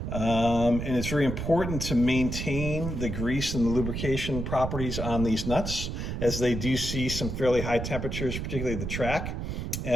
And it's very important to maintain the grease and the lubrication properties on these nuts, as they do see some fairly high temperatures, particularly the track,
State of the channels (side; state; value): right; noise; rumble, 4 dB below the sound